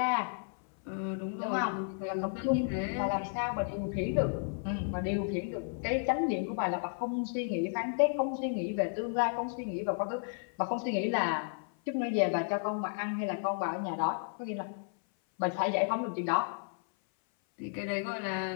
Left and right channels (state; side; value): silent; right; 56 dB below the other